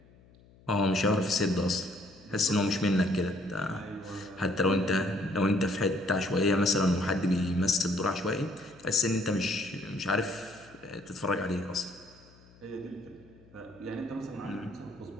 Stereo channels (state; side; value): noise; left; hum, 26 dB below the sound